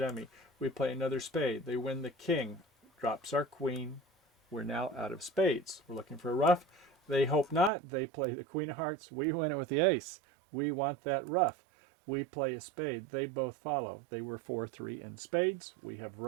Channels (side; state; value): left; drops out; at 7.7 s